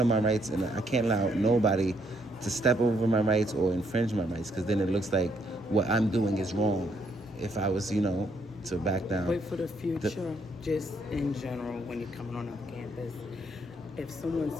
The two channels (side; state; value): both; normal; correlation 0.72